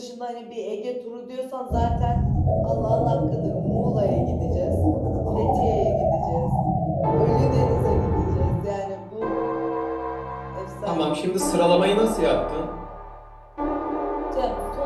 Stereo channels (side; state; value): both; identical; correlation 1.00